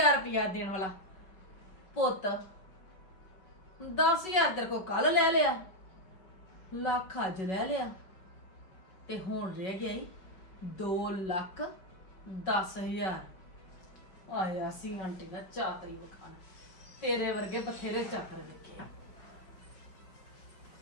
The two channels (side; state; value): right; late; 5.3 ms